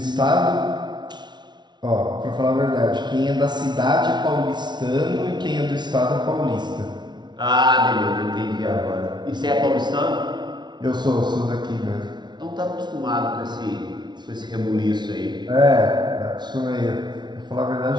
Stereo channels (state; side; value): late; left; 0.21 ms